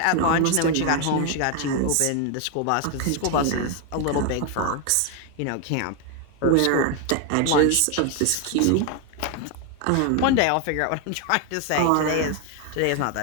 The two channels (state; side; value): different; both; correlation 0.01